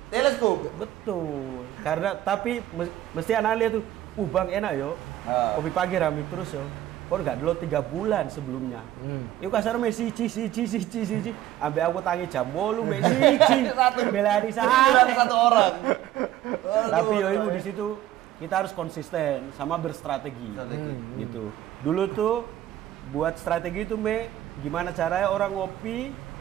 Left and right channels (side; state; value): left; quieter; 13.3 dB